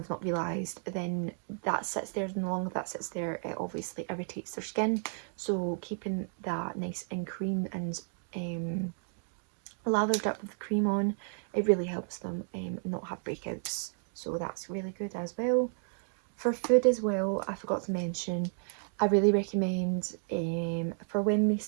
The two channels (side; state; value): left; silent; 56 dB below the other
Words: not realised, then that sits there, and the longer that sits there it obviously irritates their skin. So keeping that nice and cream and lathered up with cream on, it really helps them not have breakouts. So that's really good as well. For food as well, I forgot to mention, I really recommend for when they